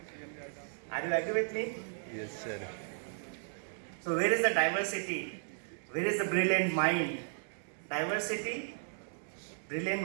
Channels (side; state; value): left; silent; digital silence